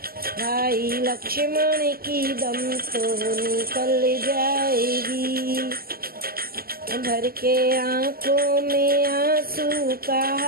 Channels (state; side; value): late; left; 0.43 ms